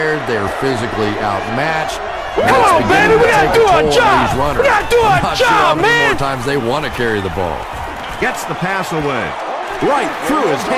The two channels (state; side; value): identical; both; correlation 1.00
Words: They're physically outmatched. Come on, baby, we gotta do our job. We gotta do our job, man. More times they want to carry the ball. Gets the pass away. Right through his